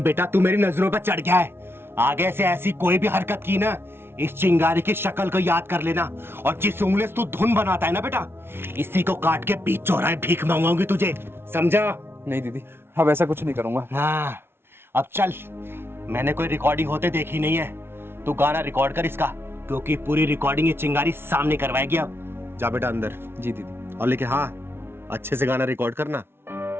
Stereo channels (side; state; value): left; late; 0.12 ms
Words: बेटा तू मेरी नजरों पर चढ़ गया है। आगे से ऐसी कोई भी हरकत की ना, इस चिंगारी की शक्ल को याद कर लेना। और जिस उंगली से तू धुन बनाता है ना बेटा, इसी को काट के बीच चौराहे भीख मांगूंगी तुझे, समझा? नहीं दीदी, अब ऐसा कुछ नहीं करूंगा। हाँ, अब चल। मैंने कोई रिकॉर्डिंग होते देखी नहीं है, तू गाना रिकॉर्ड कर इसका, क्योंकि पूरी रिकॉर्डिंग ये चिंगारी सामने करवाएगी। अब जा बेटा अंदर। जी दीदी। और लेकिन हाँ, अच्छे से गाना रिकॉर्ड करना।